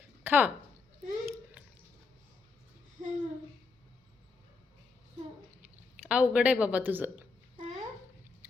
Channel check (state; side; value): quieter; right; 4.4 dB